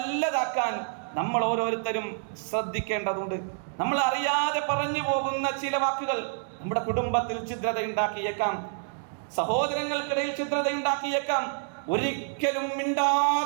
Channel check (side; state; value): left; silent; digital silence